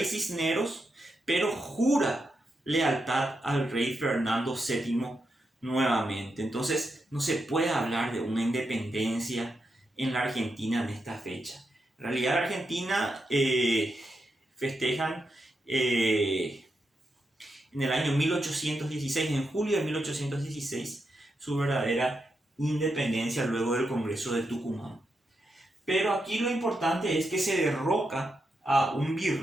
Cisneros, pero jura lealtad al rey Fernando VII nuevamente. Entonces no se puede hablar de una independencia en la Argentina en esta fecha. En realidad, la Argentina festejan en el año 1816, en julio de 1816, su verdadera independencia luego del Congreso de Tucumán. Pero aquí lo importante es que se derroca a un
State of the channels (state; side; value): normal; both; correlation 0.85